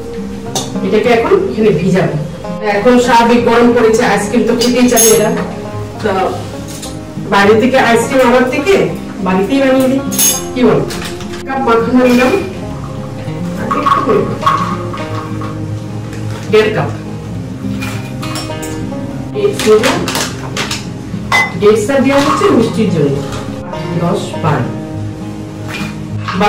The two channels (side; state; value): both; identical; correlation 1.00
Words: এটাকে এখন এখানে ভিজাবো। এখন স্বাভাবিক গরম পড়েছে, আইসক্রিম তো খেতেই চাই এরা, তো বাইরে থেকে আইসক্রিম আনার থেকে বাড়িতেই বানিয়ে দিই, কি বল? কাপ মাখানো নিলাম, 1.5 কাপ ডেটসটা দেওয়া হচ্ছে মিষ্টির জন্য, 10-12